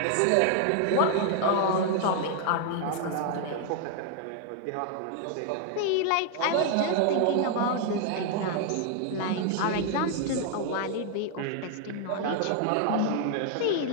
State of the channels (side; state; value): both; different; correlation 0.00